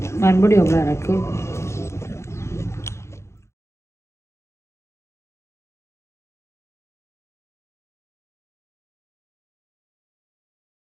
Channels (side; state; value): right; late; 0.13 ms